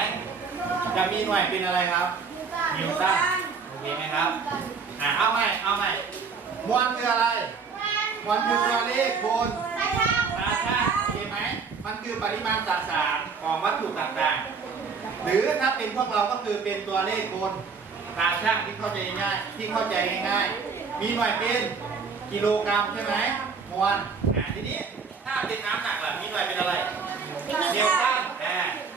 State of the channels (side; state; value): left; quieter; 5.3 dB